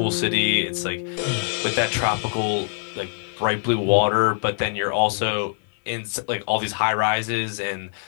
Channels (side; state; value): right; silent; 61 dB below the other